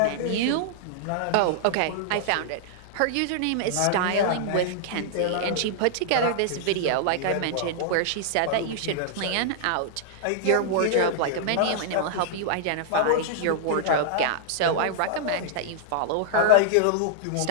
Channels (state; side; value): different; both; correlation -0.01